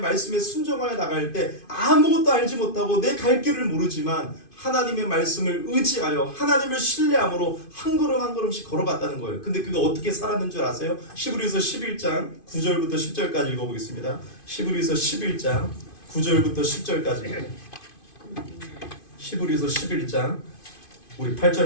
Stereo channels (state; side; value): late; right; 2.5 ms